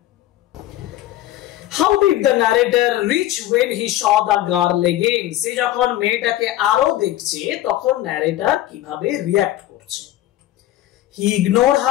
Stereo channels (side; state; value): right; quieter; 14.3 dB